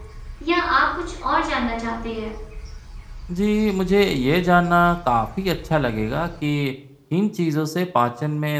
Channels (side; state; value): both; identical; correlation 1.00